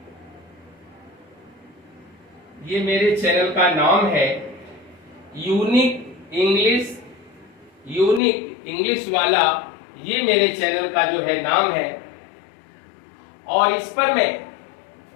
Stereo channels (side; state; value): right; drops out; at 8.2 s